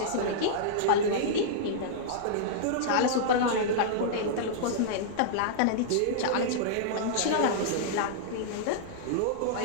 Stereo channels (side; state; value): both; different; correlation -0.02